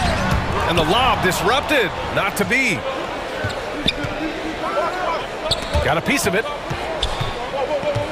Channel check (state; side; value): identical; both; correlation 1.00